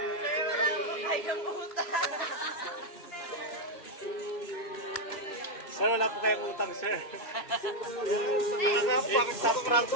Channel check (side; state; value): right; late; 3.0 ms